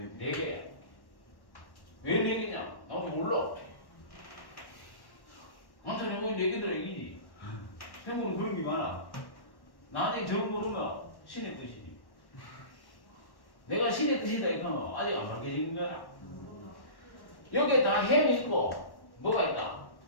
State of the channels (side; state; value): right; late; 1.1 ms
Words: 4개야. 왜 4개냐? 나도 몰라. 완전 해보니 4개들아 이기지. 생물은 그런 게 많아. 나중에 정 모르면 신의 뜻이지. 내가 신의 뜻이다 이거는 아직 안 밝혀진 거야. 여기에 다 햄이 있고 뭐가 있다?